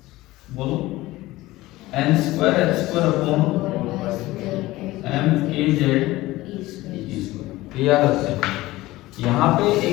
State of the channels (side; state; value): right; quieter; 18.2 dB